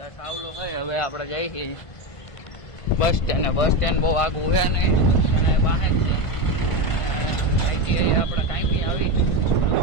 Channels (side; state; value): right; late; 1.5 ms